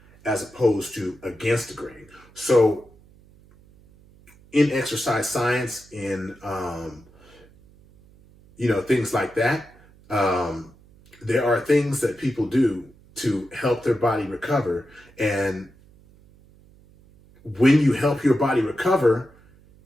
as opposed to against the grain? So in exercise science, in things like that, there are things that people do to help their body recover. And when you help your body recover,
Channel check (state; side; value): noise; right; hum, 27 dB below the sound